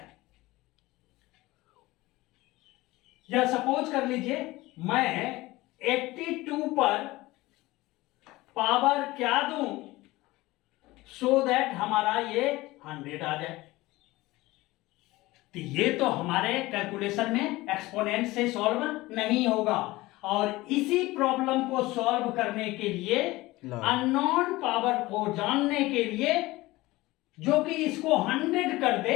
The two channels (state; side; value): quieter; right; 19.5 dB